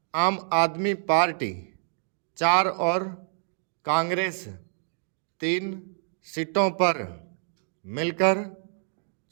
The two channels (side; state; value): left; silent; digital silence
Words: आम आदमी पार्टी 4 और कांग्रेस 3 सीटों पर मिलकर